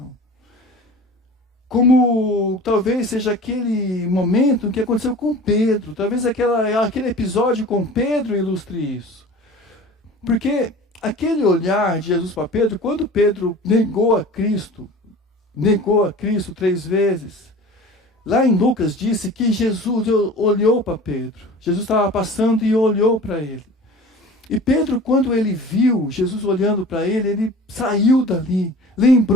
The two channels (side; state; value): both; normal; correlation 0.40